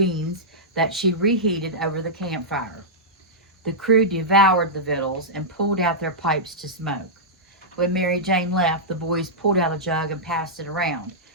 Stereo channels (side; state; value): both; normal; correlation -0.12